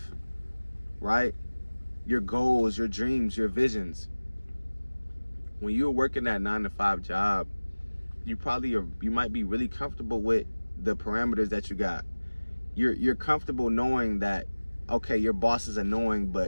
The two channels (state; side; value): inverted; both; correlation -1.00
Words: right? Your goals, your dreams, your visions. When you're working that 9-to-5 job, you might be really comfortable with the parameters that you got. You're comfortable knowing that, okay, your boss is annoying,